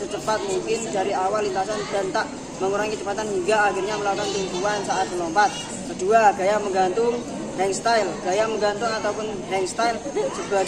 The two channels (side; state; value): both; identical; correlation 1.00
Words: mungkin dari awal lintasan dan tak mengurangi kecepatan hingga akhirnya melakukan tumpuan saat melompat. Kedua, gaya menggantung hang style. Gaya menggantung ataupun hang style